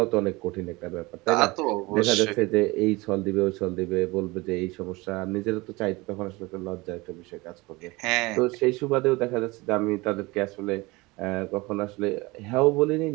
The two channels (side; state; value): left; quieter; 23.0 dB